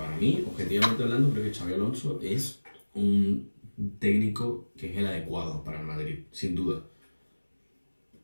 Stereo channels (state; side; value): inverted; both; correlation -1.00